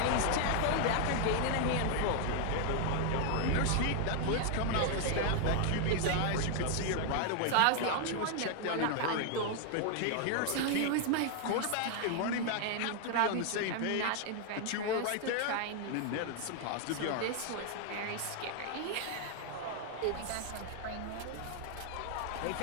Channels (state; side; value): different; both; correlation 0.00